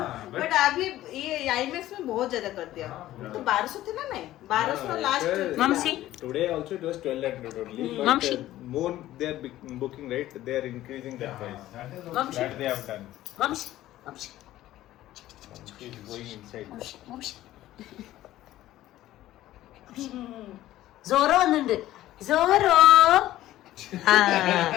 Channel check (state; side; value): quieter; right; 14.6 dB